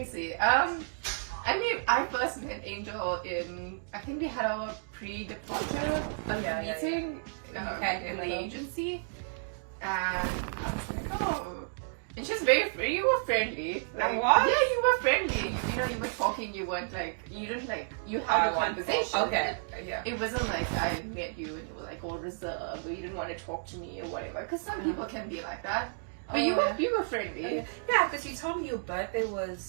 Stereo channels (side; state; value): left; silent; digital silence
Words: see. I first met Angel in, I think we had our pre-departure meeting in the agency, and I was like, oh, and she's very free. You were friendly. Like, what? Yeah, you were friendly. You know, you were talking. You weren't like, you didn't like, you had a conversation. Okay. Yeah. It wasn't like I met you and you were like all reserved, or you didn't want to talk to me or whatever. Because some people can be like that. But you were friendly. Yeah, because you told me your birthday